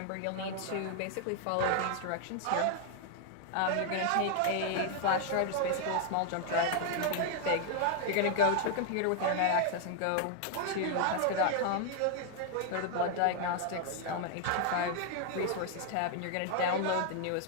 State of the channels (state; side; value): different; both; correlation 0.00